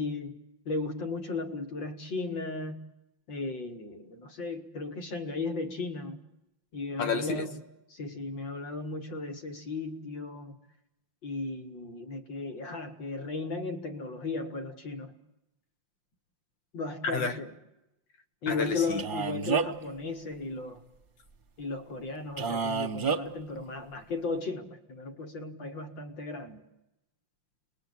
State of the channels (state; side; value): late; right; 5.7 ms